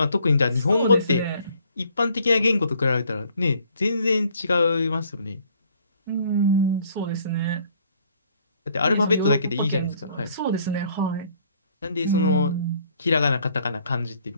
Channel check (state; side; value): inverted; both; correlation -0.61